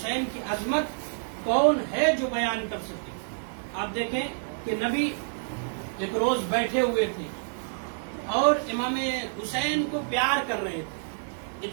کی عظمت کون ہے جو بیان کر سکے. آپ دیکھیں کہ نبی ایک روز بیٹھے ہوئے تھے اور امام حسین کو پیار کر رہے تھے.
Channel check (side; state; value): left; silent; digital silence